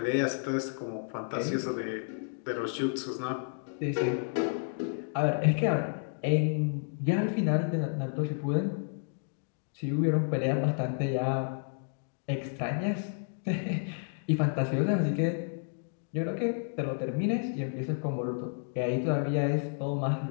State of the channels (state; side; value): silent; right; digital silence